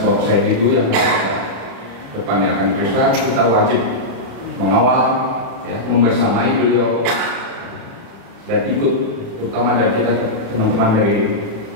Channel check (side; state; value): left; late; 36 ms